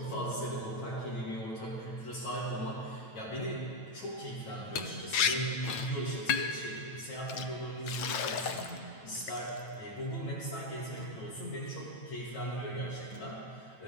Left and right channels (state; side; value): late; right; 9.1 ms